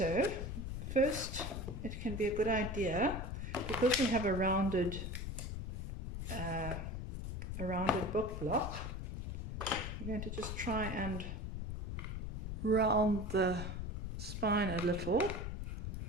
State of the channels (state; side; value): noise; left; rumble, 4 dB below the sound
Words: first it can be a good idea, because we have a rounded book block, we're going to just try and round the spine a little.